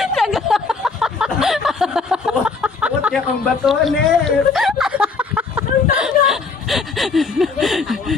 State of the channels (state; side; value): quieter; right; 4.5 dB